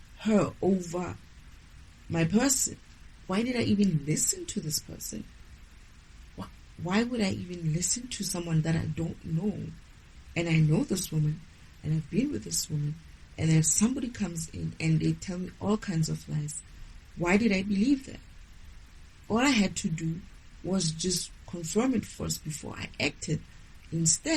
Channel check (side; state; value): both; identical; correlation 1.00